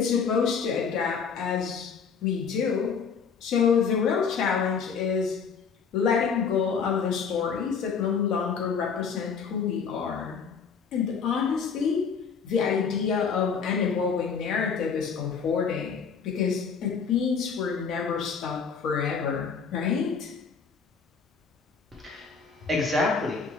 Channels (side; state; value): right; quieter; 6.0 dB